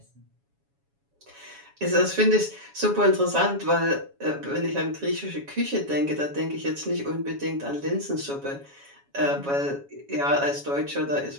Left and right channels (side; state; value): left; late; 7.2 ms